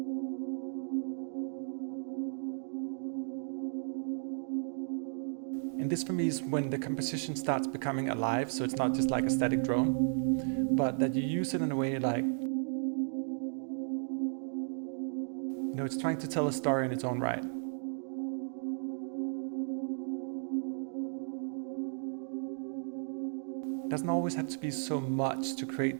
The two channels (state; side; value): silent; left; 55 dB below the other